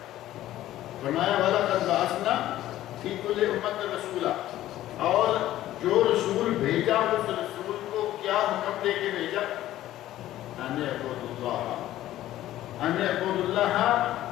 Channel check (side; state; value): right; quieter; 14.0 dB